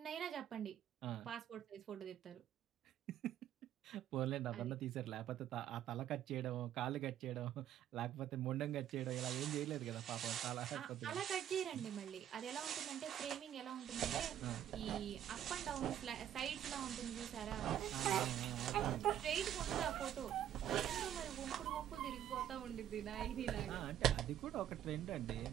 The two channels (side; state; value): left; quieter; 10.8 dB